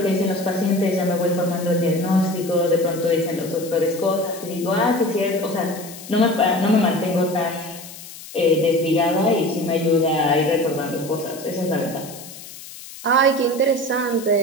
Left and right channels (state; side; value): noise; left; hiss, 15 dB below the sound